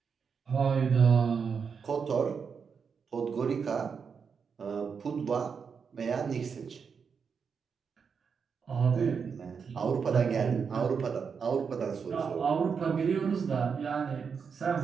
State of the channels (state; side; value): quieter; left; 6.1 dB